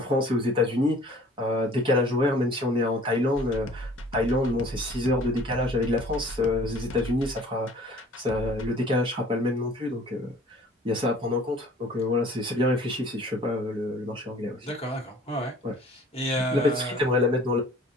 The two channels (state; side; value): normal; both; correlation 0.51